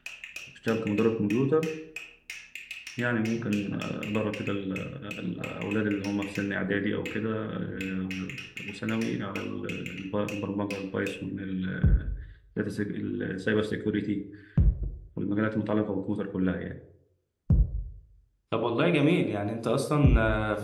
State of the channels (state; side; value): identical; both; correlation 1.00